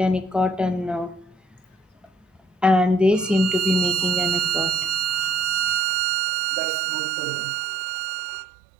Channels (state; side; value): drops out; left; at 5.8 s